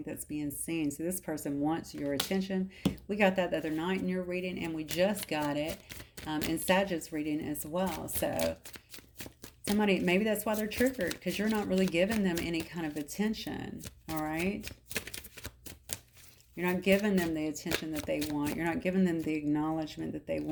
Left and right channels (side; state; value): both; identical; correlation 1.00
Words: that's being seen. So this person wants your attention. We got that the other night in your reading, and we just got it in Sagittarius reading as well. So somebody, maybe that's why they're triggered, because you're not really giving them any kind of attention, all right? You're not giving them the attention that they want. You're not giving them the acknowledgement that they